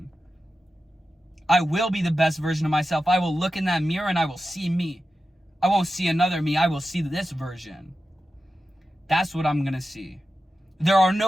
I will be the best version of myself. I will look in that mirror and I will see me. I won't see another me. I will see this version. That's what I'm going to see. There are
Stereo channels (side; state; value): both; normal; correlation 0.92